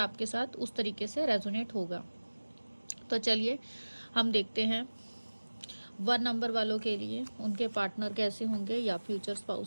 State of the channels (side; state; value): both; inverted; correlation -1.00